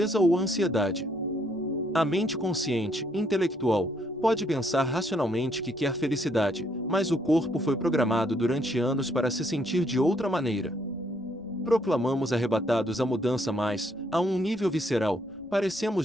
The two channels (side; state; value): right; noise; rumble, 29 dB below the sound